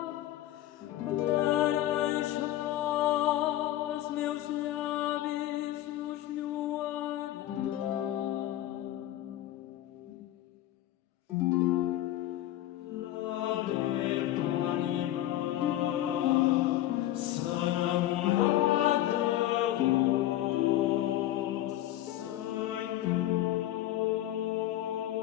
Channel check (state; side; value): quieter; right; 13.9 dB